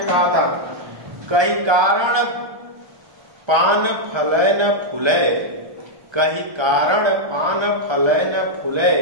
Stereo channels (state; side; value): late; left; 1.3 ms